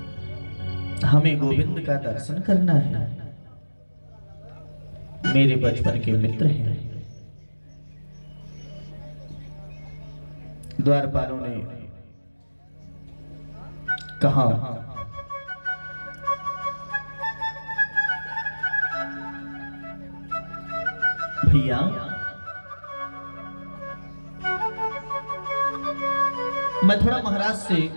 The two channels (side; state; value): both; inverted; correlation -1.00